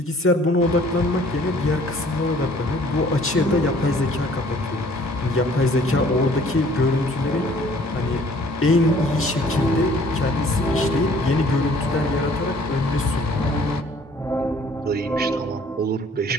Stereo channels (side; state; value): both; normal; correlation 0.56